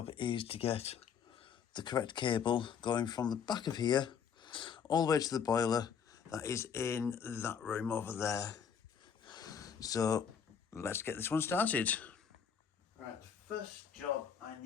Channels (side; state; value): right; quieter; 7.2 dB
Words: is to get the correct cable going from the back of here all the way to the boiler that is in that room over there. So let's get this one started. Right, the first job I